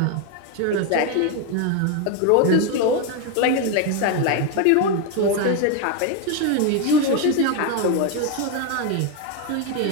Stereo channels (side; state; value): both; different; correlation 0.01